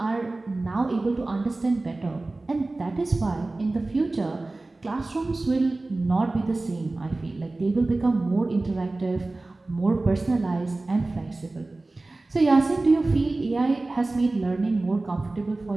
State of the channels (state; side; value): quieter; left; 3.1 dB